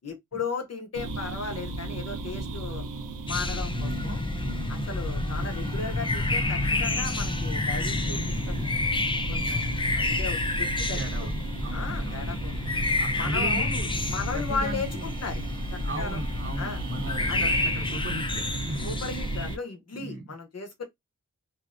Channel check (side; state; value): both; normal; correlation 0.17